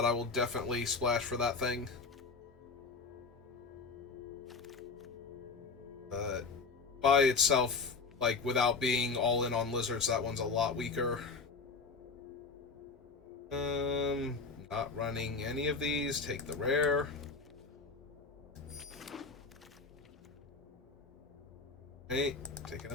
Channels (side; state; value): right; quieter; 4.6 dB